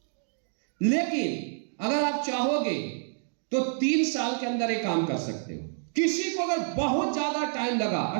लेकिन अगर आप चाहोगे तो 3 साल के अंदर ये काम कर सकते हो। किसी को अगर बहुत ज्यादा टाइम लगा,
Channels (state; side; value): silent; left; digital silence